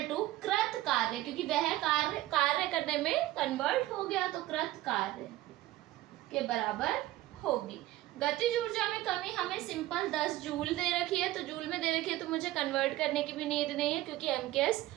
टू कृत कार्य, क्योंकि वह कार्य करने में कन्वर्ट हो गया तो कृत कार्य के बराबर होगी। गतिज ऊर्जा में कमी हमें सिंपल 10 जूल दे रखी है, तो जूल में दे रखी है तो मुझे कन्वर्ट करने की भी नीड नहीं है, क्योंकि एमकेएस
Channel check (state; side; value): quieter; left; 16.2 dB